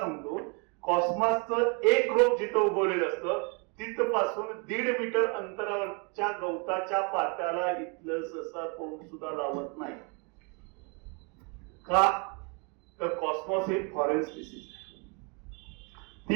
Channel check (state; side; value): quieter; left; 34.2 dB